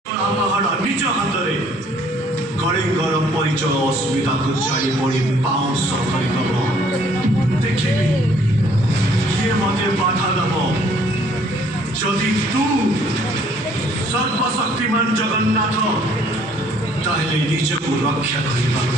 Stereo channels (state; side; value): normal; both; correlation 0.61